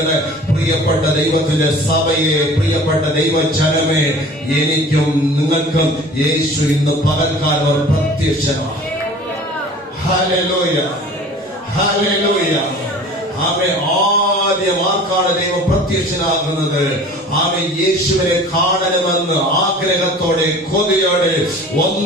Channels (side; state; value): both; normal; correlation 0.44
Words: പ്രിയപ്പെട്ട ദൈവത്തിന്റെ സഭയെ, പ്രിയപ്പെട്ട ദൈവജനമേ, എനിക്കും നിങ്ങൾക്കും യേശു ഇന്ന് പകൽക്കാലം പ്രത്യക്ഷനാണ്. Hallelujah, hallelujah. ആദ്യം ആർക്കാണ് ദൈവം പ്രത്യക്ഷനാകുന്നത്? യേശുവിനെ കാണണമെന്ന് ആഗ്രഹത്തോടെ, കൊതിയോടെ